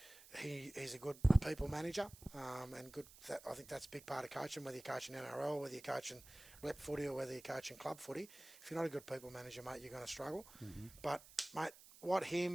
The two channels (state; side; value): noise; right; hiss, 20 dB below the sound